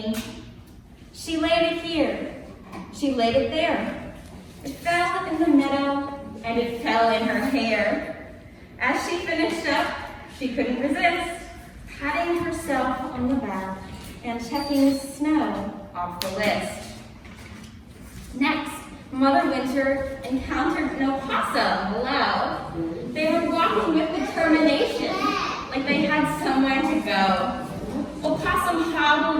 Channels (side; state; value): both; identical; correlation 1.00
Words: She laid it here. She laid it there. It fell in the meadow, and it fell in her hair. As she finished up, she couldn't resist, patting herself on the back and checking snow off the list. Next, Mother Winter encountered an opossum below. They were walking with determination, like they had somewhere to go. Opossum